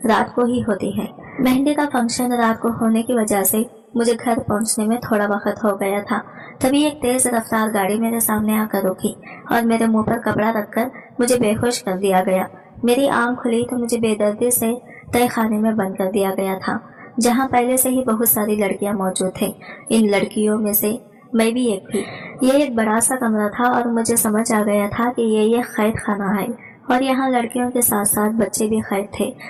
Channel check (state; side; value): identical; both; correlation 1.00